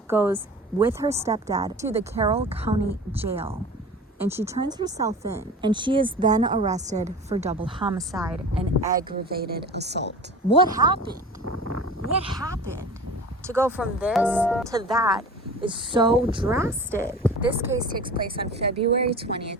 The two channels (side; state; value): both; normal; correlation 0.37